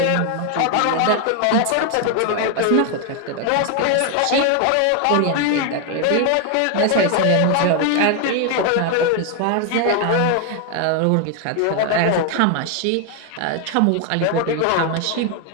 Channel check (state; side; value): different; both; correlation 0.01